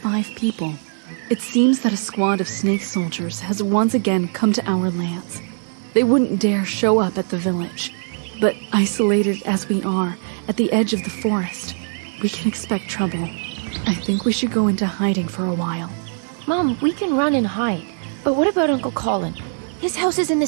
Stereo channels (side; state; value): left; silent; digital silence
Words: people. It seems that a squad of snake soldiers has once again come to our lands. They wouldn't dare show up at the village, but isolated as we are at the edge of the forest, we can expect trouble. I think we should go into hiding for a while. Mom, we can run and hide, but what about Uncle Colin? His house is in the